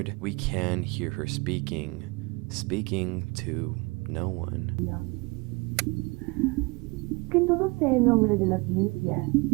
we can hear her speaking to no one. Que todo sea en nombre de la ciencia.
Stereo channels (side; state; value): left; quieter; 26.5 dB